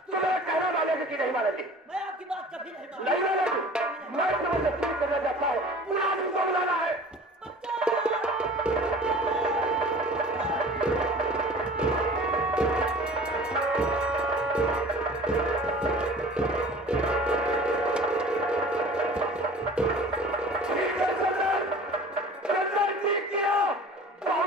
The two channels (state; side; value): normal; both; correlation 0.43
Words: तुम्हें कहना मानेगी कि नहीं मानेगी? मैं आपकी बात कभी नहीं नहीं मानेगी। मैं तुम्हें जरूर करना चाहता हूँ, पूरा आदमी को बुलाना है।